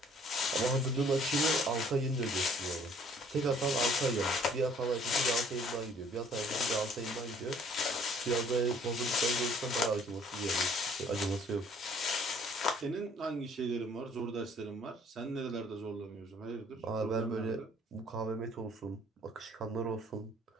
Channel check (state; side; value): normal; both; correlation 0.58